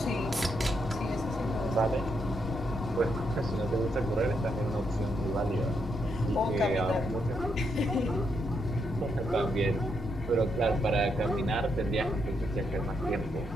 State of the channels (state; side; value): normal; both; correlation 0.79